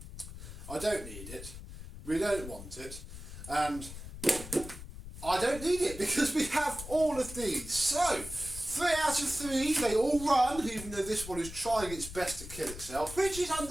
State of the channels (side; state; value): left; noise; rumble, 12 dB below the sound